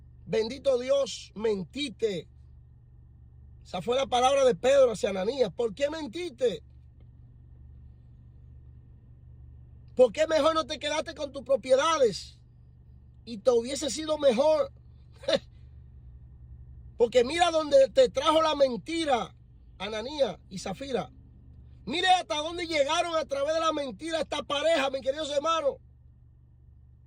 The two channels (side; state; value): both; identical; correlation 1.00